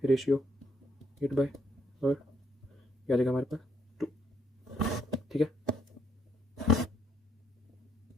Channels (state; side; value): normal; both; correlation 0.72